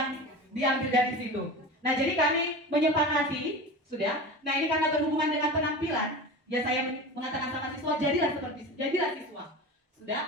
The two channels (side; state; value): both; normal; correlation 0.31